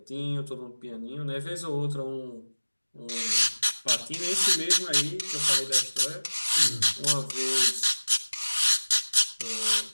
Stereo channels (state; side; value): inverted; both; correlation -1.00